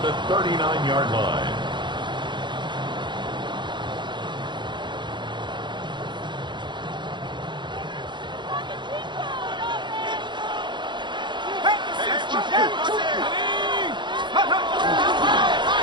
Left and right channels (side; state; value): left; late; 0.23 ms